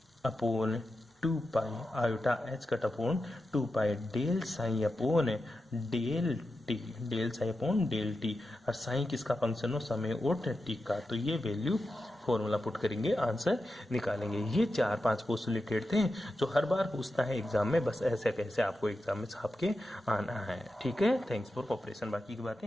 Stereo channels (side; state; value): both; normal; correlation 0.90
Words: upon 2 pi, iota H cut upon 2 pi del psi upon del T, del psi upon del T. और साइन किसका फंक्शन हो? समय और टी का। तो ये वैल्यू फॉर्मूला पुट करेंगे, आंसर निकालेंगे। ये 4-5 पोस्टुलेटेड थे जो हर बार पूछता है एग्जाम में, बस ऐसे कैसे आपको एग्जाम में छाप के आना है। ठीक है, थैंक्स फॉर कोऑपरेशन। बाकी की